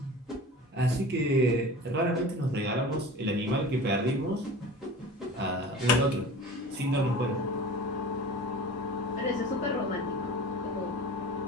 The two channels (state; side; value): normal; both; correlation 0.37